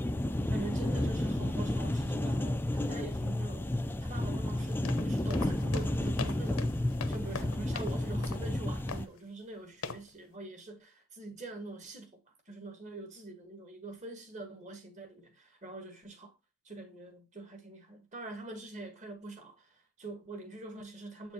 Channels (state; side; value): normal; both; correlation 0.86